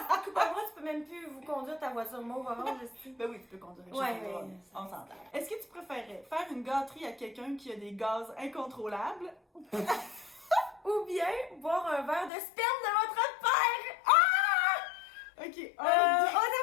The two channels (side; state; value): right; drops out; at 12.3 s